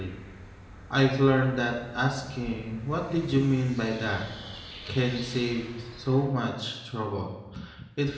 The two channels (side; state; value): both; identical; correlation 1.00